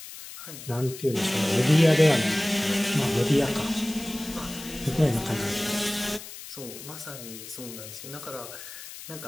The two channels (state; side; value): noise; left; hiss, 13 dB below the sound